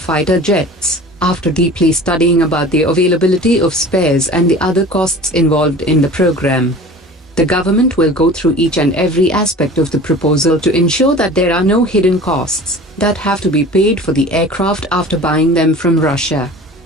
jets after deeply studying about the availability of spares and the other costs involved in the program. The government will go through each and every aspect of the proposal to ensure that there are no hidden costs that have to be paid for the aircraft after buying them from Russia.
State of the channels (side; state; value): both; normal; correlation 0.40